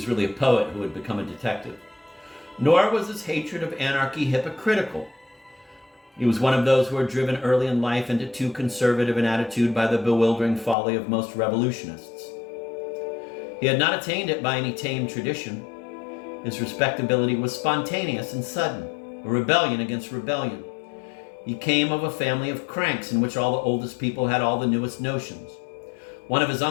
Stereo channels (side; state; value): right; drops out; at 10.8 s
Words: really a poet who had become a detective. Nor was his hatred of anarchy hypocritical. He was one of those who are driven early in life into too conservative an attitude by the bewildering folly of most revolutionists. He had not attained it by any tame tradition. His respectability was spontaneous and sudden, a rebellion against rebellion. He came of a family of cranks in which all the oldest people had all the newest notions. One of his